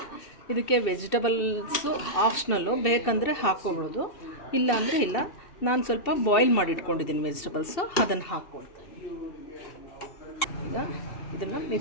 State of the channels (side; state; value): right; late; 2.6 ms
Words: ಇದಕ್ಕೆ ವೆಜಿಟಬಲ್ಸು ಆಪ್ಷನಲ್ಲು, ಬೇಕಂದರೆ ಹಾಕ್ಕೊಬೋದು, ಇಲ್ಲ ಅಂದರೆ ಇಲ್ಲ. ನಾನು ಸ್ವಲ್ಪ ಬಾಯ್ಲ್ ಮಾಡಿ ಇಟ್ಕೊಂಡಿದ್ದೀನಿ ವೆಜಿಟಬಲ್ಸು, ಅದನ್ನು ಹಾಕ್ಕೊಳ್ತಾ ಇದ್ದೀನಿ. ಈಗ ಇದನ್ನು